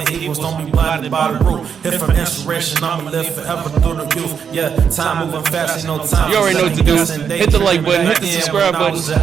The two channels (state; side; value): quieter; left; 7.1 dB